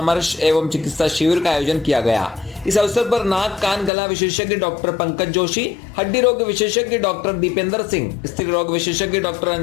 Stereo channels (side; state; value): right; drops out; at 3.9 s